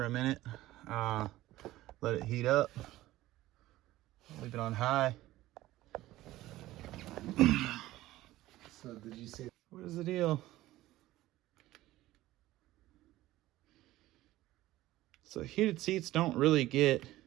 a minute. Let it heat up. Leave it on high. So did you say? What is the deal? So heated seats don't really get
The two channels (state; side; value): quieter; left; 16.2 dB